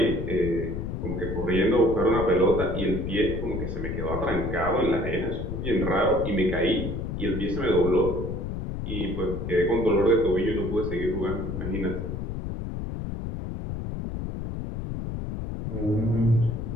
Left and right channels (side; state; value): left; noise; rumble, 5 dB below the sound